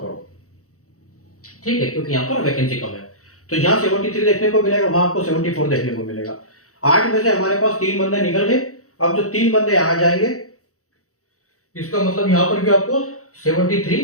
करो, ठीक है, क्योंकि यहाँ पर वैकेंसी कम है। तो यहाँ 73 देखने को मिलेगा, वहां आपको 74 देखने को मिलेगा। 8 में से हमारे पास 3 बंदे निकल गए। अब जो 3 बंदे आ जाएंगे, इसका मतलब यहाँ पर भी आपको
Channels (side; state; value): right; late; 0.65 ms